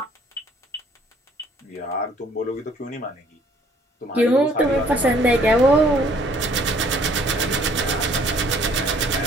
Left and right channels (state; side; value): normal; both; correlation 0.60